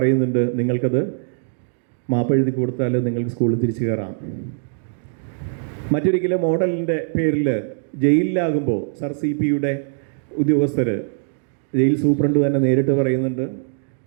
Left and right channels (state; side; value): silent; left; digital silence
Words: നിങ്ങൾക്കത് മാപ്പ് എഴുതി കൊടുത്താൽ നിങ്ങൾക്ക് സ്കൂളിൽ തിരിച്ചു കയറാം. മറ്റൊരിക്കലും മോഡലിൻ്റെ പേരിൽ ജയിലിലാകുമ്പോൾ സർ CP-യുടെ ഉദ്യോഗസ്ഥർ, ജയിൽ സൂപ്രണ്ട് തന്നെ നേരിട്ട് പറയുന്നുണ്ട്